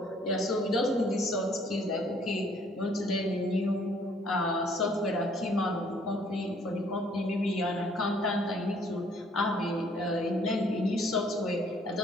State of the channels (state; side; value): normal; both; correlation 0.62